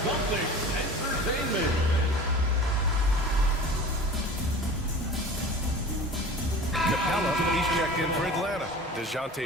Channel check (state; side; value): normal; both; correlation 0.39